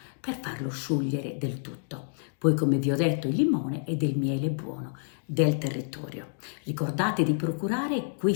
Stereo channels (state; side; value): silent; right; digital silence